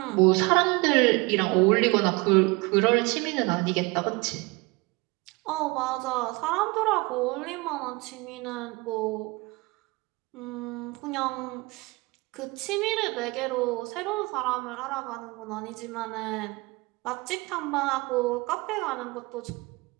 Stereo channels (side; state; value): left; quieter; 25.2 dB